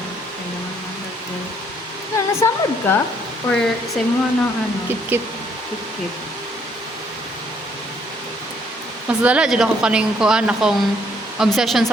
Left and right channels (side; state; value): both; normal; correlation 0.67